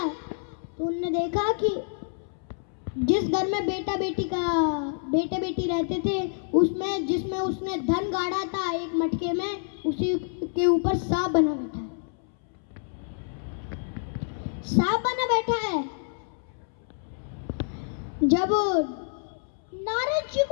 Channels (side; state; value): right; silent; 60 dB below the other